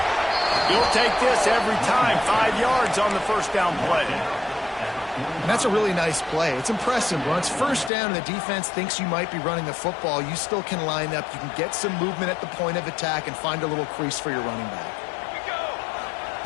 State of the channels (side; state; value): right; drops out; at 7.9 s